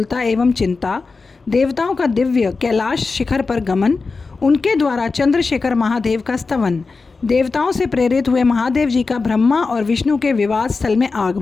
एवं चिंता, देवताओं का दिव्य कैलाश शिखर पर गमन, उनके द्वारा चंद्रशेखर महादेव का स्तवन, देवताओं से प्रेरित हुए महादेव जी का ब्रह्मा और विष्णु के विवाद स्थल में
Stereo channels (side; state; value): right; quieter; 4.2 dB